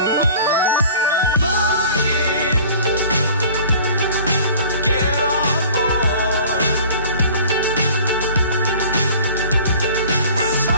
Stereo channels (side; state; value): both; inverted; correlation -0.46